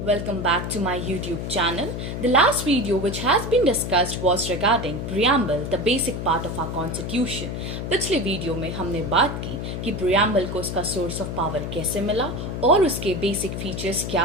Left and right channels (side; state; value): left; noise; hum, 5 dB below the sound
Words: Welcome back to my YouTube channel. The last video which has been discussed was regarding preamble, the basic part of our constitution. पिछले video में हमने बात की कि preamble को उसका source of power कैसे मिला और उसके basic features